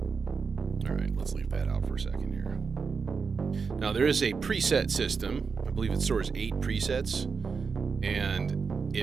All right, let's leave that out for a second here. Now, there is a preset system. I believe it stores 8 presets, and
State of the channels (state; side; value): quieter; left; 5.3 dB